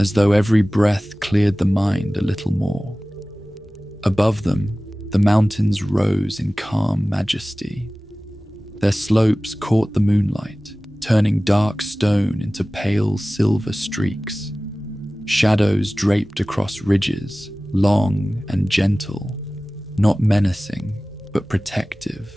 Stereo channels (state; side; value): normal; both; correlation 0.97